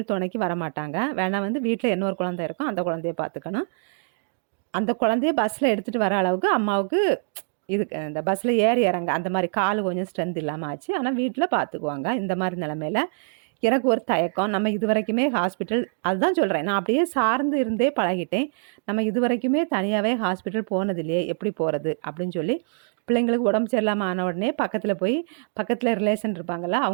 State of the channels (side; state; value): left; silent; digital silence